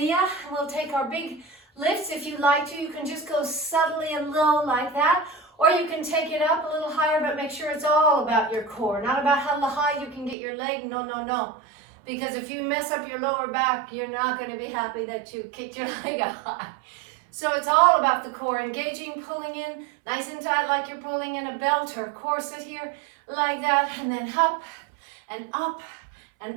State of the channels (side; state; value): left; drops out; at 10.4 s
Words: We'll take our big lifts. If you'd like to, you can just go subtly and low like that, or you can take it up a little higher, but make sure it's all about your core, not about how high you can get your leg. No, no, no. Because if you mess up your lower back, you're not going to be happy that you kicked your leg up high. So it's all about the core, engaging, pulling in, nice and tight like you're pulling in a belt or a corset here, like that, and then up and up and